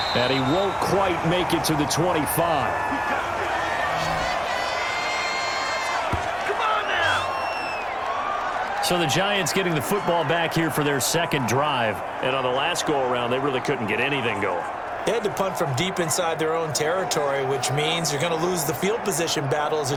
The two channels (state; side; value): identical; both; correlation 1.00